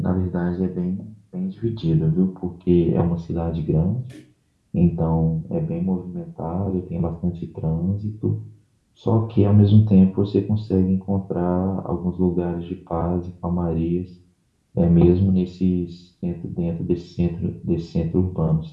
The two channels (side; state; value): both; identical; correlation 1.00